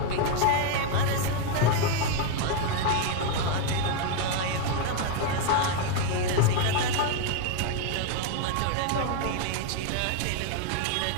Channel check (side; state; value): both; different; correlation 0.01